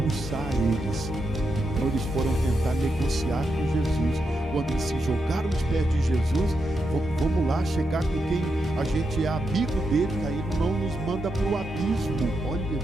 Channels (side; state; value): both; normal; correlation 0.84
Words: eles. Então eles foram tentar negociar com Jesus. Quando eles se jogaram nos pés de Jesus, vamos lá chegar com quem a gente é amigo dele, que aí não nos manda para o abismo. Olha,